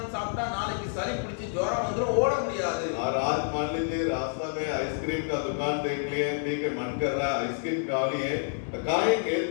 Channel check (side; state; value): right; silent; digital silence